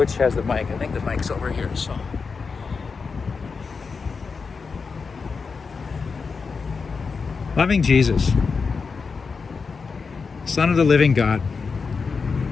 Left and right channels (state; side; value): quieter; right; 5.0 dB